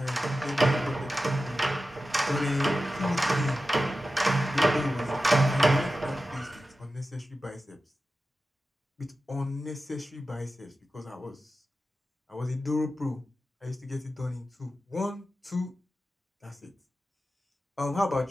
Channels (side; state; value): both; normal; correlation 0.93